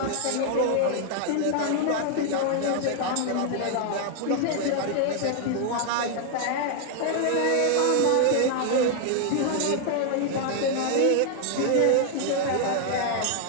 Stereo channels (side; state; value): both; different; correlation 0.00